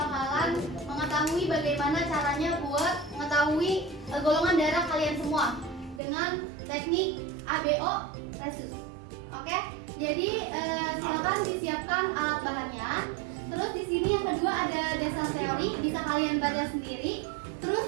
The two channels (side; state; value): left; drops out; at 6.0 s